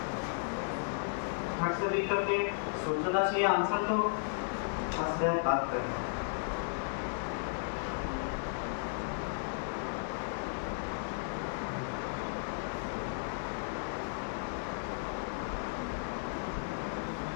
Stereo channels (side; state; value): right; silent; digital silence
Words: हट से देख करके सोचना चाहिए आंसर, तो मसला बात करना।